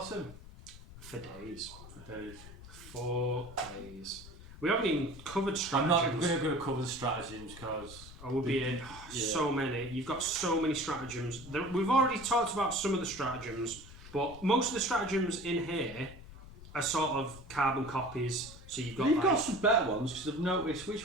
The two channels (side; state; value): left; noise; rumble, 17 dB below the sound